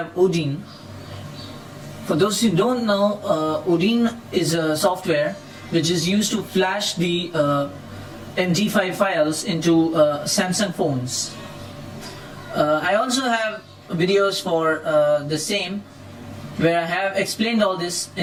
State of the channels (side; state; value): both; identical; correlation 1.00